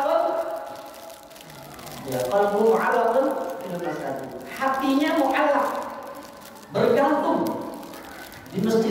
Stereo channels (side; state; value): both; identical; correlation 1.00